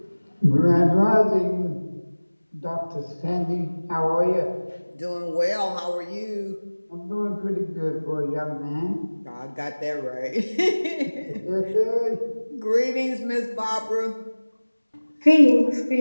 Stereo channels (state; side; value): inverted; both; correlation -1.00